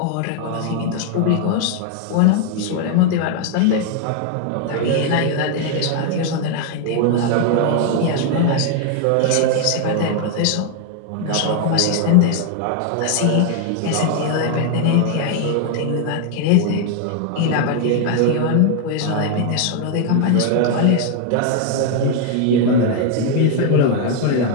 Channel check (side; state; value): both; different; correlation 0.00